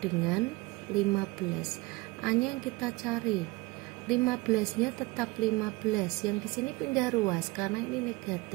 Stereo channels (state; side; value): quieter; left; 23.2 dB